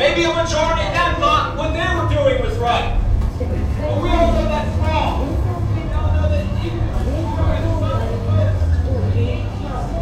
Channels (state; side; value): identical; both; correlation 1.00